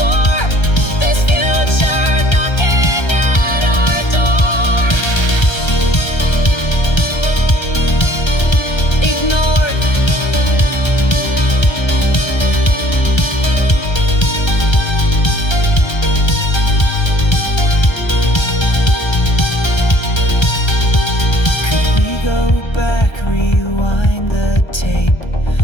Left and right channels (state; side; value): late; right; 1.3 ms